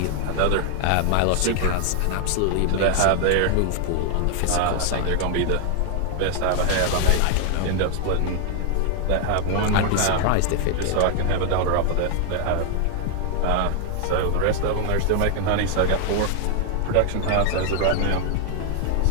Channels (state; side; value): different; both; correlation 0.00